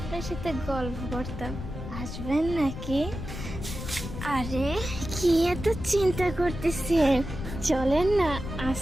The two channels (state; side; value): noise; left; rumble, 8 dB below the sound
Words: সাথে গল্প করতাম। আসবেন নাকি? আরে কি এত চিন্তা করতেছেন, চলেন না